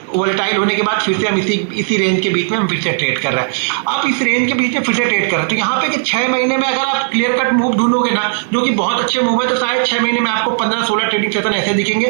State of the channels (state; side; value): silent; left; digital silence